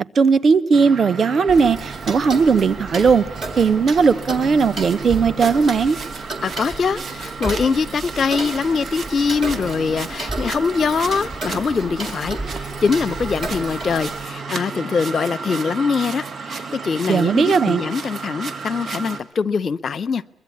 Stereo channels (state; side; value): normal; both; correlation 0.80